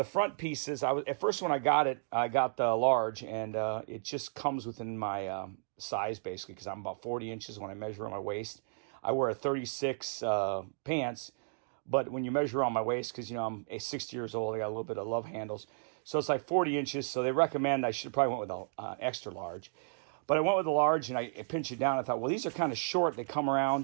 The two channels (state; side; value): silent; left; digital silence